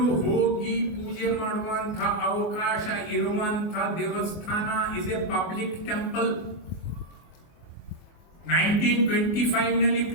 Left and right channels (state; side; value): late; right; 24 ms